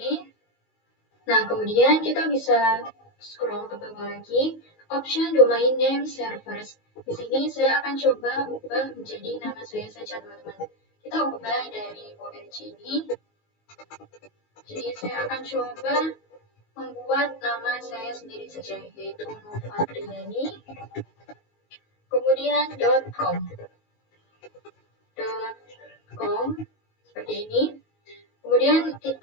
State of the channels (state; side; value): late; right; 19 ms